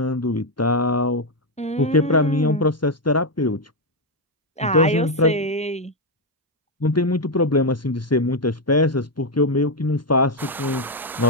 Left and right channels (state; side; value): normal; both; correlation 0.04